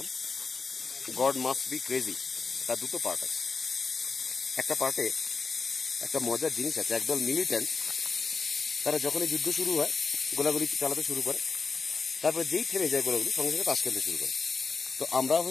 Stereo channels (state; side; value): quieter; right; 4.7 dB